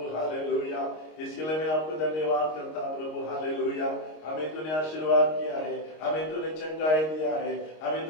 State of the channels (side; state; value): right; late; 26 ms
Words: हालेलुया इसके लिए मैं आपको धन्यवाद करता प्रभु हालेलुया हमें तूने आशीर्वाद किया है हमें तूने चंगाई दिया है हमें